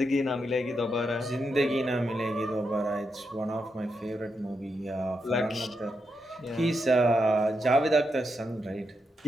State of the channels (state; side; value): normal; both; correlation 0.84